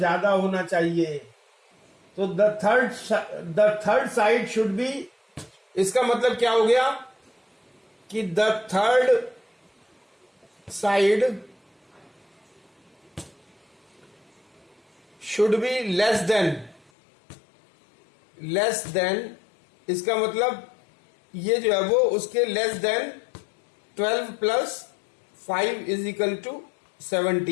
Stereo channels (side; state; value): right; drops out; at 16.9 s